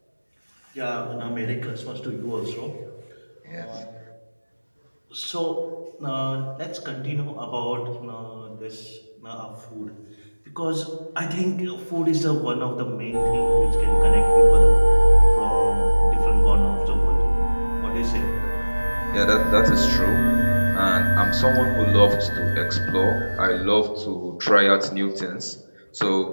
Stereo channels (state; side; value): inverted; both; correlation -1.00